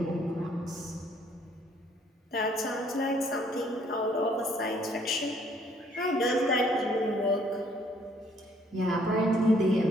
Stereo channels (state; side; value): normal; both; correlation 0.63